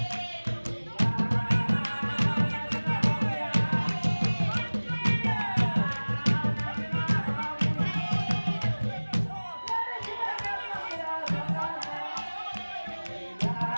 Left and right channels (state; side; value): inverted; both; correlation -1.00